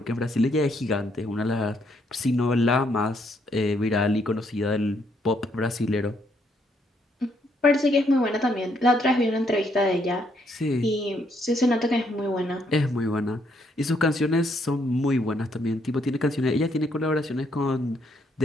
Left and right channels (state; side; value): normal; both; correlation 0.72